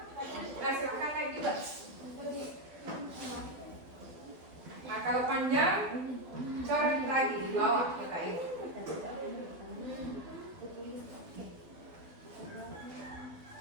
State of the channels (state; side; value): late; left; 12 ms